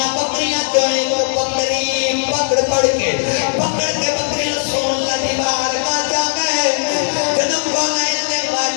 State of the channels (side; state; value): right; silent; 58 dB below the other